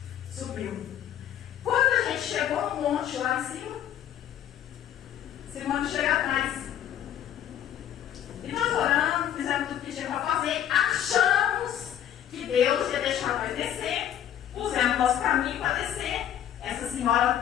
monte lá em cima. Esse monte chega atrás. E nós oramos, fizemos tudo que tinha para fazer, achamos que Deus ia deixar nós descer, pusemos nosso caminho para descer. Essa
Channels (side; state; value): right; quieter; 10.6 dB